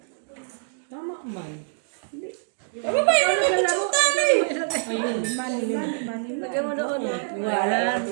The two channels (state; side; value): silent; left; digital silence